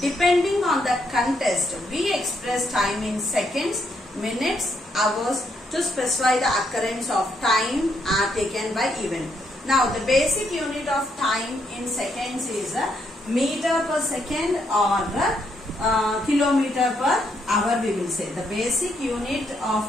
Depending on the contest, we express time in seconds, minutes, hours to specify the occurrence of time taken by event. Now, the basic unit of time in seconds is meter per second or kilometer per hour we will say. The basic unit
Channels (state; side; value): normal; both; correlation 0.75